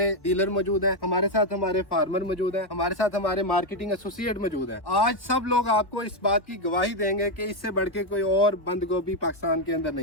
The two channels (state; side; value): late; right; 1.1 ms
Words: डीलर मौजूद है, हमारे साथ हमारे फार्मर मौजूद है, हमारे साथ हमारे मार्केटिंग एसोसिएट मौजूद है। आज सब लोग आपको इस बात की गवाही देंगे कि इससे बढ़ के कोई और बंद गोभी पाकिस्तान के अंदर